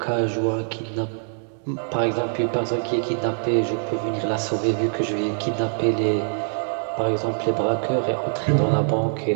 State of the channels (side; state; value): left; silent; digital silence